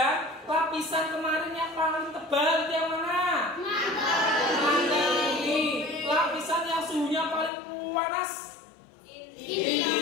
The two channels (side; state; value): right; drops out; at 7.5 s